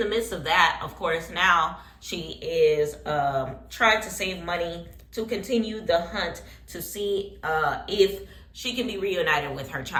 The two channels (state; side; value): identical; both; correlation 1.00